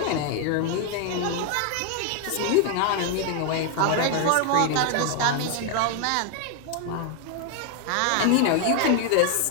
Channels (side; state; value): both; different; correlation 0.00